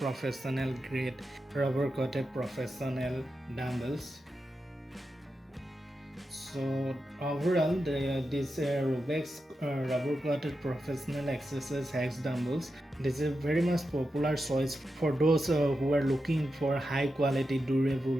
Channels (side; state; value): both; normal; correlation 0.89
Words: grade rubber coated professional dumbbells. So overall this RUBX rubber coated professional exercise hex dumbbells, this is a very much popular choice for those who are looking for high quality,